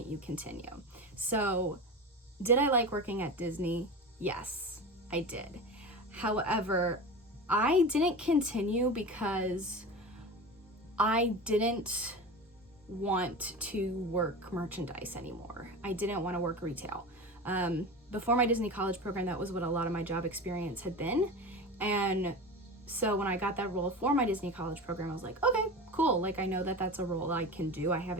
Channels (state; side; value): normal; both; correlation 0.29